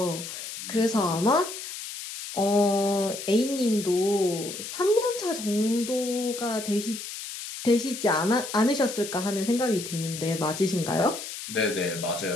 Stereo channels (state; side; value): noise; left; hiss, 9 dB below the sound